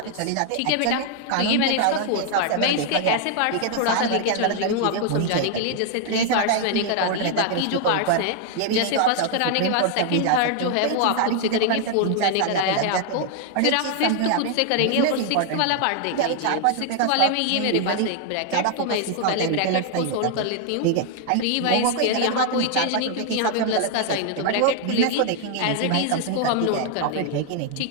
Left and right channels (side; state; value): both; different; correlation 0.00